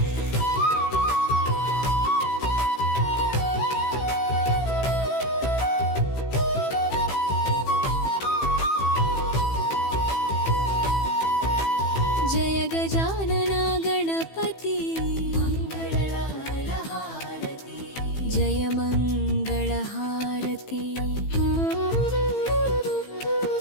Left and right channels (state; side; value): late; right; 15 ms